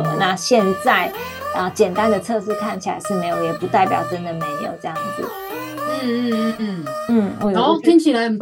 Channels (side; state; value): both; identical; correlation 1.00